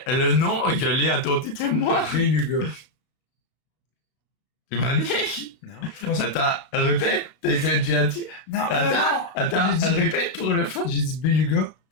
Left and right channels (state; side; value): late; right; 32 ms